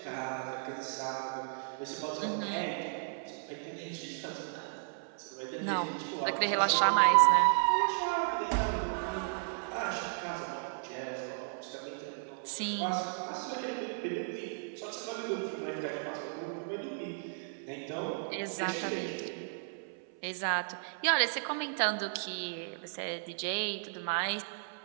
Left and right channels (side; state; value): left; silent; 55 dB below the other